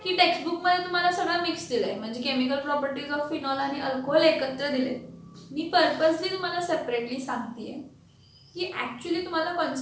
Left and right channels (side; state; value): both; identical; correlation 1.00